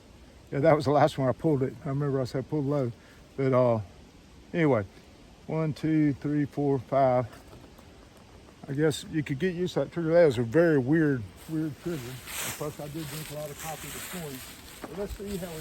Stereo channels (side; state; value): both; identical; correlation 1.00